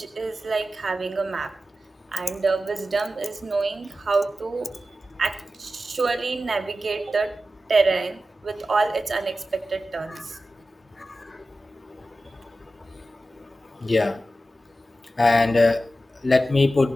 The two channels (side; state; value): both; normal; correlation 0.93